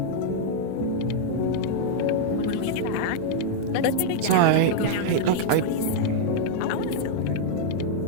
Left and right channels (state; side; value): different; both; correlation -0.01